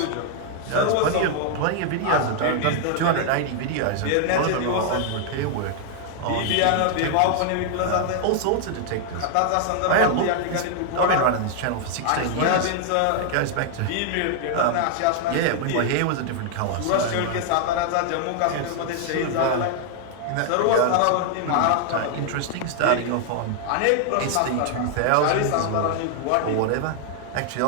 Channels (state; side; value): different; both; correlation 0.00